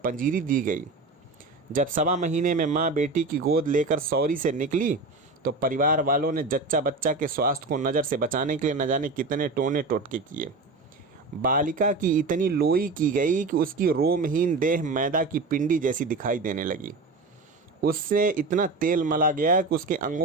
दी गई। जब 1.25 महीने में माँ बेटी की गोद लेकर सौरी से निकली, तो परिवार वालों ने जच्चा बच्चा के स्वास्थ्य को नज़र से बचाने के लिए न जाने कितने टोने टोटके किए। बालिका की इतनी लोई की गई कि उसकी रोमहीन देह मैदा की पिंडी जैसी दिखाई देने लगी। उससे इतना तेल मला गया कि उसके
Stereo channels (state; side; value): quieter; left; 3.7 dB